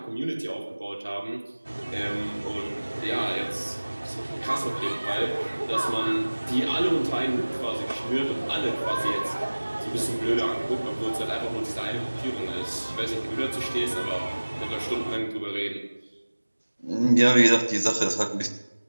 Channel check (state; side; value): inverted; both; correlation -1.00